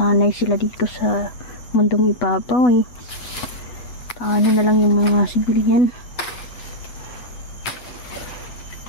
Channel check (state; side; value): late; right; 8.1 ms